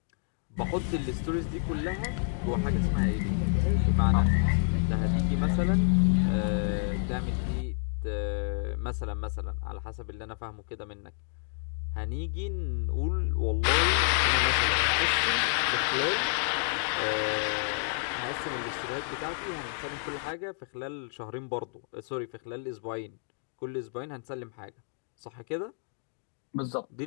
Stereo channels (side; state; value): right; silent; digital silence